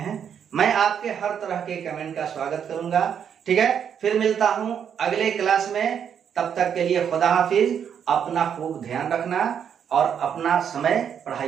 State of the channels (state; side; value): quieter; left; 8.1 dB